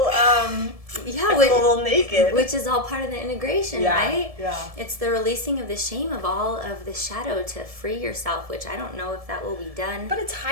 naked. Which is all part of the integration, right? Yeah. It's the releasing of the shame of all of the shadow to free yourself, which I don't know if that will be done. But it's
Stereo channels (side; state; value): left; late; 1.7 ms